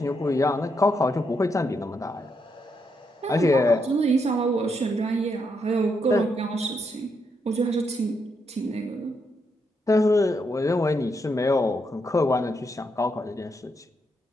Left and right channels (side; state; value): both; normal; correlation 0.79